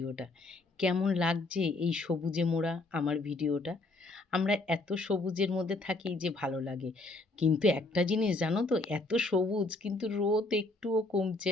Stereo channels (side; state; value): right; quieter; 3.0 dB